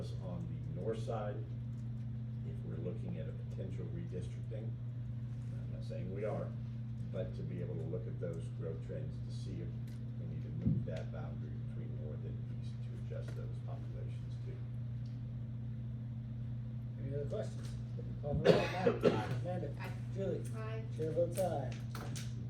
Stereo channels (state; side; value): identical; both; correlation 1.00